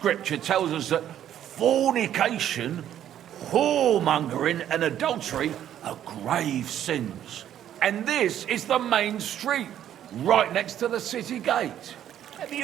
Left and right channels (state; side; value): quieter; left; 10.8 dB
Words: tells us that fornication, whoremongering and adultery are grave sins. And this is the main street, right next to the city gate. Have